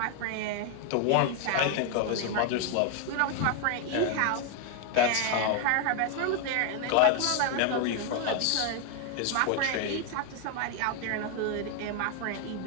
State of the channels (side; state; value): both; different; correlation 0.00